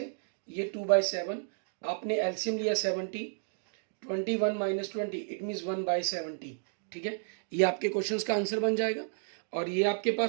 ये 2/7। आपने एलसीएम लिया 70, 21 माइनस 20 इट मीन्स 1/70, ठीक है। ये आपके क्वेश्चंस का आंसर बन जाएगा। और ये आपके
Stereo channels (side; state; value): left; silent; digital silence